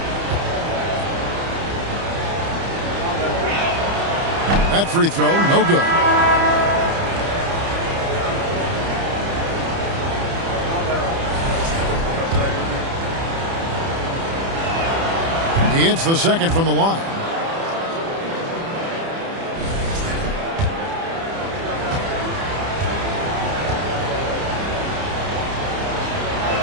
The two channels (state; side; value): late; left; 30 ms